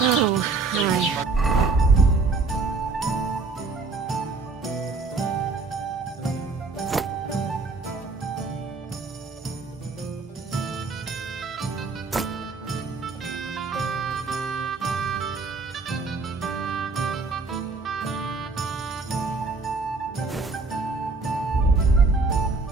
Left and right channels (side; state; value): left; quieter; 4.0 dB